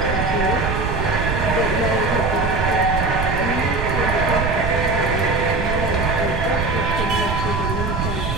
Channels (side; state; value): right; noise; rumble, 3 dB below the sound